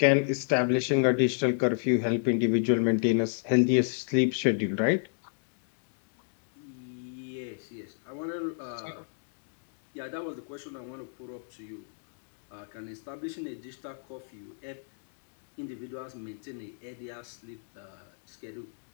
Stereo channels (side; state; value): right; silent; digital silence